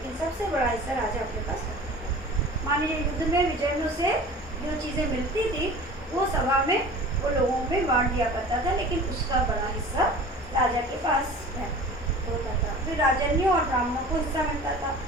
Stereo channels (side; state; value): both; normal; correlation 0.40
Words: सबसे बड़ा हिस्सा राजा अपने पास रखता था। मान लीजिए युद्ध में विजय में उसे जो चीजें मिलती थी वो सभा में वो लोगों में बांट दिया करता था, लेकिन उसका बड़ा हिस्सा राजा के पास होता था। फिर राजन्यों और ब्राह्मणों को हिस्सा मिलता था।